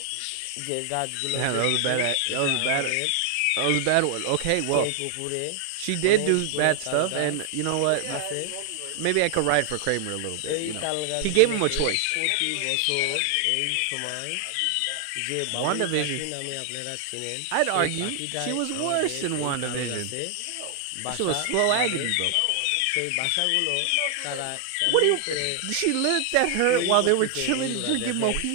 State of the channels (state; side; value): different; both; correlation 0.00